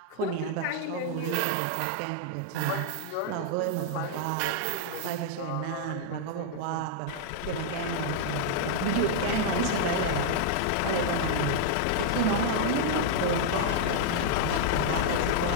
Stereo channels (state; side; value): different; both; correlation -0.01